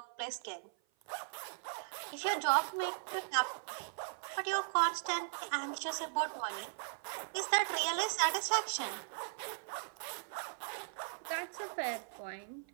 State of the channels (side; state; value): left; silent; 52 dB below the other